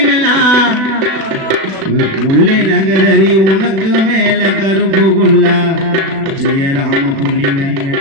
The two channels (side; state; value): left; late; 36 ms